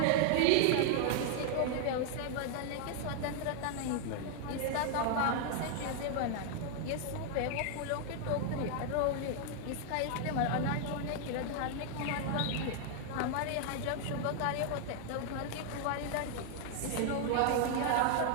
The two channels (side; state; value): both; different; correlation 0.00